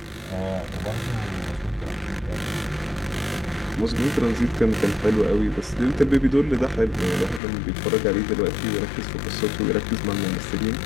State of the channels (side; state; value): right; drops out; at 7.4 s